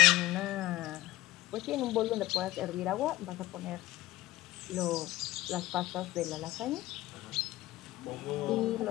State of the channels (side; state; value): right; quieter; 17.4 dB